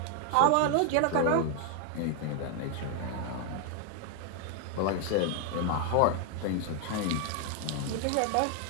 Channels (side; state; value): both; different; correlation 0.00